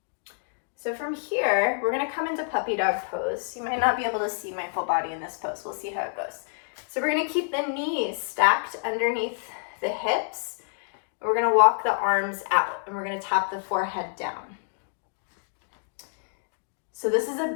So from here, we're going to come into puppy dog pose. You might not be able to see my full body in this pose. We'll see how it goes. So we're going to keep the knees stacked underneath the hips. We're going to walk the arms out, and we're going to tap the forehead down. So this is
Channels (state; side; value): silent; right; digital silence